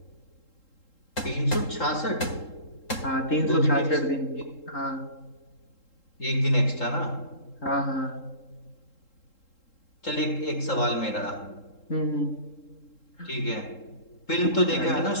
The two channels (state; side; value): late; right; 3.7 ms